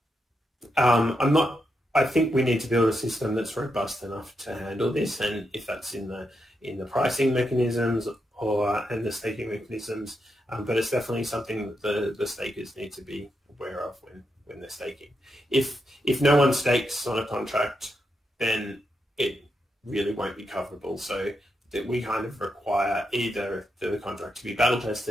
I think we need to build a system that's robust enough to handle this, and if that's in the pricing mechanisms and the staking mechanisms, but it's definitely something that the stakers need to be aware of when they're staking. If no one stakes on a contract, then it really won't be coverable. So that we kind of require either the contract to be battle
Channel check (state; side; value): normal; both; correlation 0.84